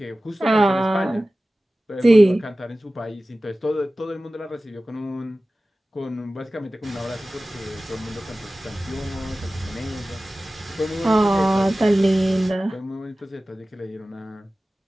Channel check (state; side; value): normal; both; correlation 0.96